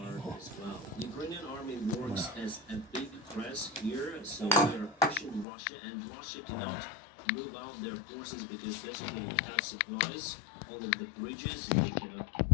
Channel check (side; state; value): right; drops out; at 5.5 s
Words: as well. The Ukrainian army works as a big press here, so we are pushing Russia, and Russia cannot move out their forces because basically we have supplies, all of the bridges, they cannot